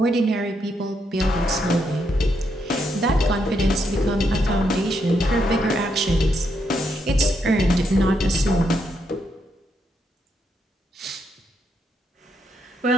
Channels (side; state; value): both; normal; correlation 0.78